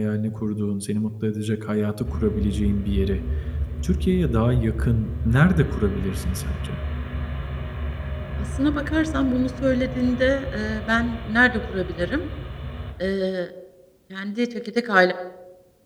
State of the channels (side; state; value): both; identical; correlation 1.00